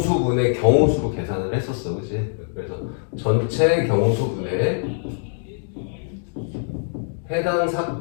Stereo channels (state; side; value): silent; right; digital silence